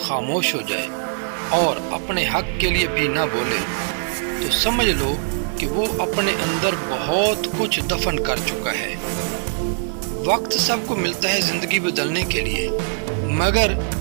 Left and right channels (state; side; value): silent; left; digital silence